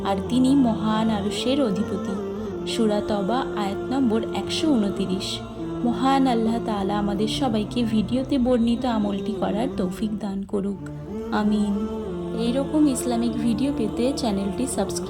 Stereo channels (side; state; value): both; identical; correlation 1.00